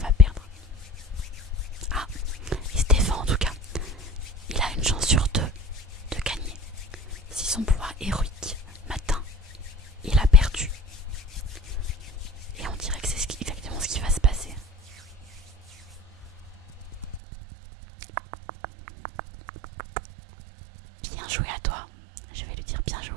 perdre? Ah, il se défend en tout cas. Il a une chance sur 2 de gagner. Si son pouvoir héroïque m'atteint, il a perdu.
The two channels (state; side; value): drops out; left; at 17.2 s